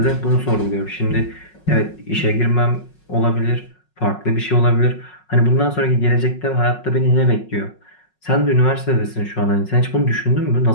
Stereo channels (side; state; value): right; late; 5.4 ms